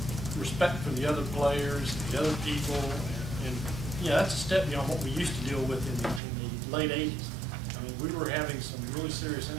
respect for the other players, the other people, and yeah, that's a step beyond what we used to deal with in the late 80s. I mean, we were having some really serious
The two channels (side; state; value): left; drops out; at 6.2 s